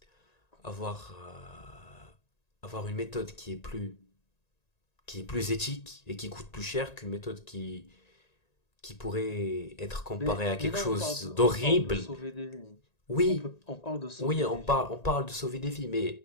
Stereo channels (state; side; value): late; right; 1.9 ms